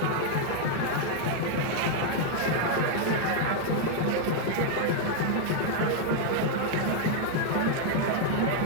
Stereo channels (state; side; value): different; both; correlation 0.00